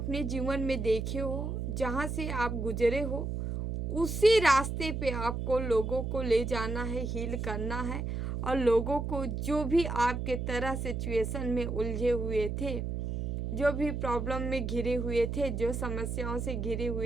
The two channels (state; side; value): noise; right; hum, 3 dB below the sound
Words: जीवन में देखे हो, जहाँ से आप गुजरे हो, उसी रास्ते पे आपको लोगों को ले जाना है, हील करना है। और लोगों को जो भी आपके तरह सिचुएशन में उलझे हुए थे, जो भी प्रॉब्लम में घिरे हुए थे, जो समस्याओं से घिरे